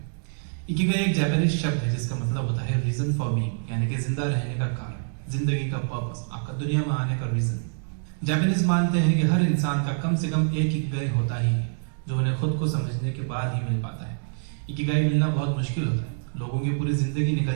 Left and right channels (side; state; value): left; silent; digital silence